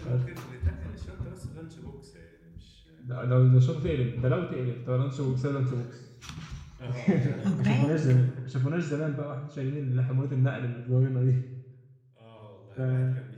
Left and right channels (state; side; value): identical; both; correlation 1.00